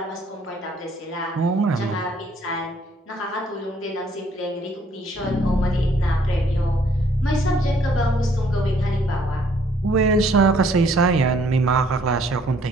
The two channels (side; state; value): both; normal; correlation 0.63